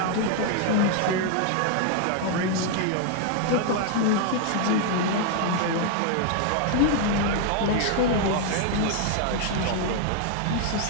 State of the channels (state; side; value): different; both; correlation 0.00